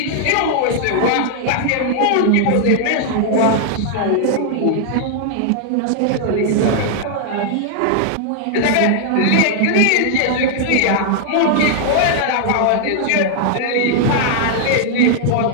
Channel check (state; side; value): different; both; correlation -0.01